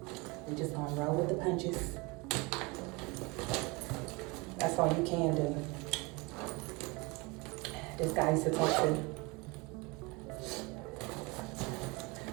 just gonna roll with the punches. That's all you can do. This guy used to talk to.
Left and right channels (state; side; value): quieter; left; 25.8 dB